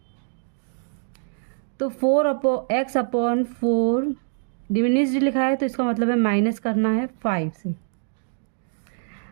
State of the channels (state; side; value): silent; left; digital silence